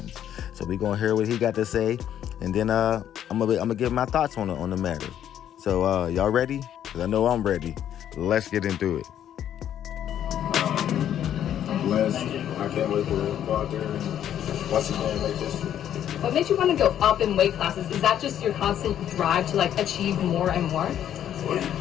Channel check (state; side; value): quieter; right; 10.4 dB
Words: So we're going to hear what he got to say, and then I'm gonna give my thoughts on the matter. So y'all ready? Because I know I'm ready. Let's get into it. Blessed. I can't wait to go out there and once again make this. What makes you want to go up in weight classes? Is that just your constant drive to achieve more and more?